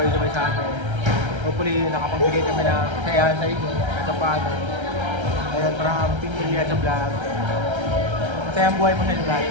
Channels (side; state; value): left; late; 1.3 ms